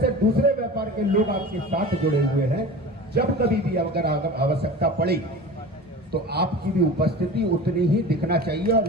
दूसरे व्यापार के लोग आपके साथ जुड़े हुए हैं, जब कभी भी अगर आवश्यकता पड़ी तो आपकी भी उपस्थिति उतनी ही दिखना चाहिए और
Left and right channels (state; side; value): normal; both; correlation 0.35